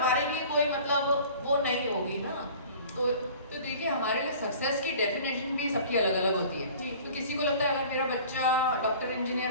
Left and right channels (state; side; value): inverted; both; correlation -0.45